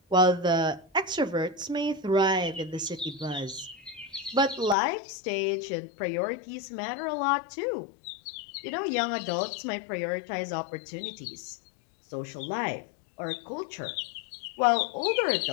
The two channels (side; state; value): right; drops out; at 4.8 s